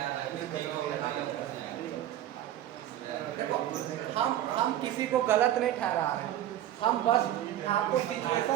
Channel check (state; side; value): quieter; left; 12.4 dB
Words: देखो, हम किसी को गलत नहीं ठहरा रहे हैं, हम बस आपको